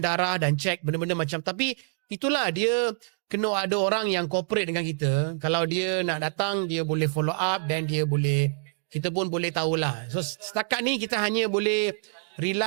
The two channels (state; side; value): silent; left; digital silence